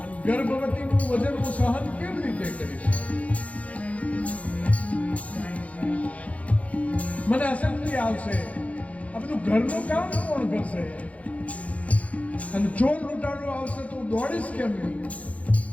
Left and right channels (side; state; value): right; late; 0.067 ms